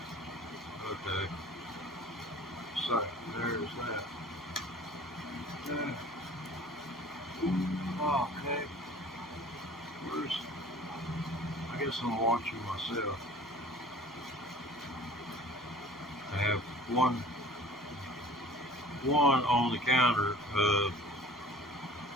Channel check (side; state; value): right; noise; hum, 29 dB below the sound